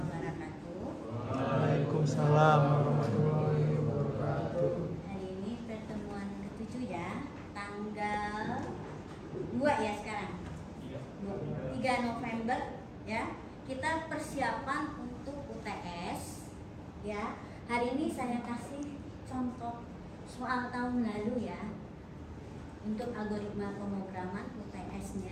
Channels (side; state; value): both; identical; correlation 1.00